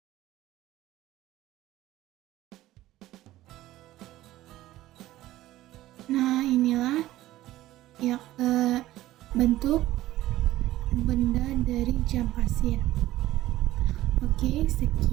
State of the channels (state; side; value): quieter; left; 15.6 dB